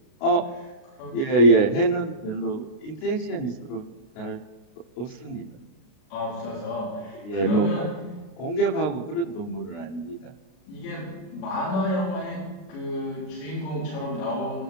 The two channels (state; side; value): late; right; 32 ms